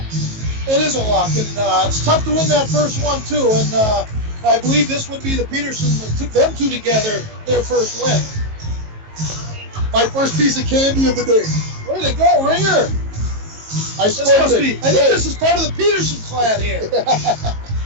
It is a lock, and it's tough to win that first one, too. And I believe this would be the Peterson that took them two together, their first win. My first piece of candy of the day. Way to go, Ringer. I think this is part of the Peterson clan here.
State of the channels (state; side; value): late; left; 19 ms